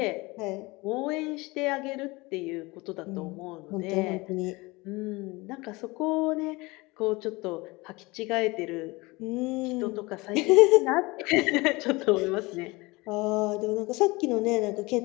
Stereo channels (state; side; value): quieter; right; 23.3 dB